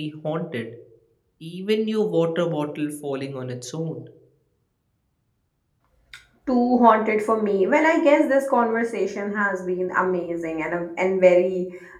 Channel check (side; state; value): both; identical; correlation 1.00